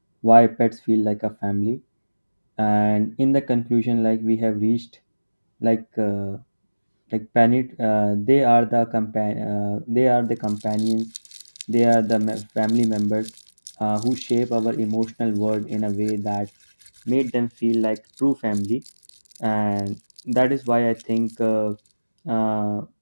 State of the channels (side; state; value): both; inverted; correlation -1.00